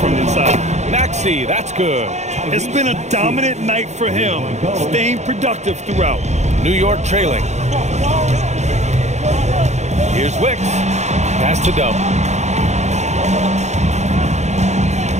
inside. Maxey, that's good. It's been a dominant night for him, staying productive throughout. New York trailing. Here's Wicks. Pass to Dub.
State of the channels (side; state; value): left; late; 0.33 ms